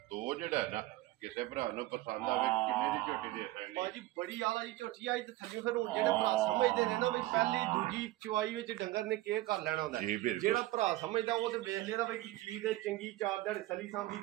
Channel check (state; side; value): quieter; left; 17.4 dB